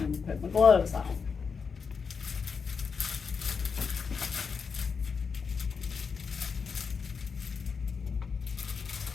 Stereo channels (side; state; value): right; quieter; 5.6 dB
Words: And put my gloves on.